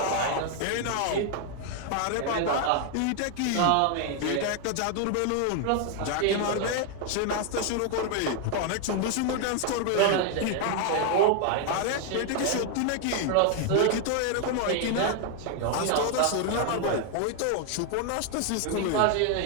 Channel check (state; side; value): different; both; correlation 0.01